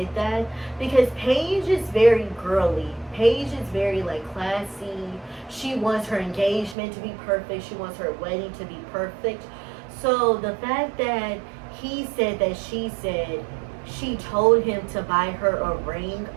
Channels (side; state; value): left; drops out; at 6.8 s